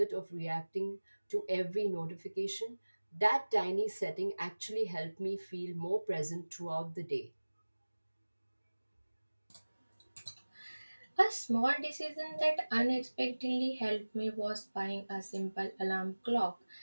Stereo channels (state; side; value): inverted; both; correlation -1.00